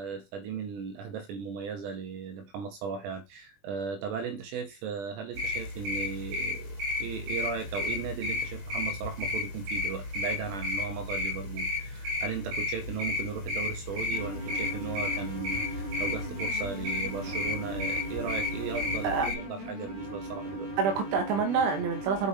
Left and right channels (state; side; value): late; left; 20 ms